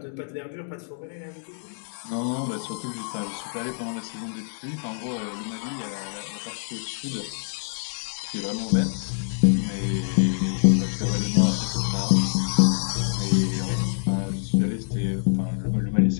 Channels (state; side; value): silent; right; digital silence